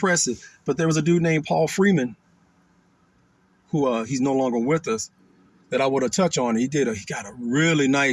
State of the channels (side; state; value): both; identical; correlation 1.00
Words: But there was a dude named Paul Freeman, who he's no longer with us, that I want to touch on. He had